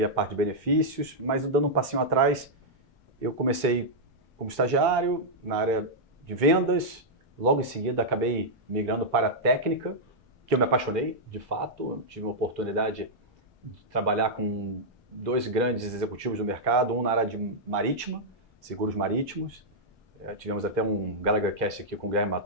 a parte de benefícios, mas dando um passinho atrás, eu comecei como estagiário na área de vendas, logo em seguida acabei migrando para a técnica, que eu me apaixonei, de fato. Eu tive uma oportunidade de trabalhar com 2 grandes executivos do mercado, um na área de marítima, seguros marítimos. Tivemos até um Gallagher Cast aqui com o Guilherme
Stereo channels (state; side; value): normal; both; correlation -0.07